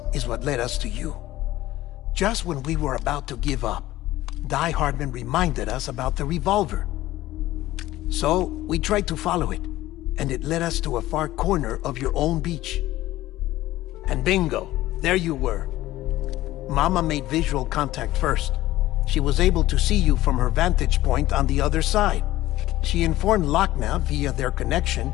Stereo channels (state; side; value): quieter; right; 16.0 dB